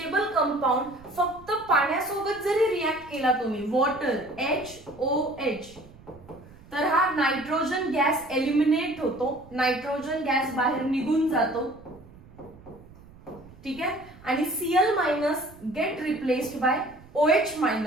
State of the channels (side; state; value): right; noise; rumble, 22 dB below the sound